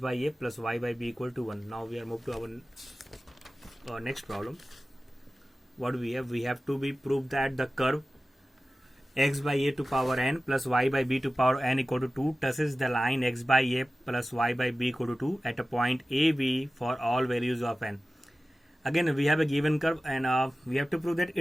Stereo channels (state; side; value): normal; both; correlation 0.96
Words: a plus y by b equal to 1. Now we are moved to our next problem. What do we have? We have to be proved that the curve x by a to power n plus y by b to power n equal to 2 touches the line x by a plus y by b equal to 2 at a point AB for all values of n. Again, we have a given curve, and we have to prove that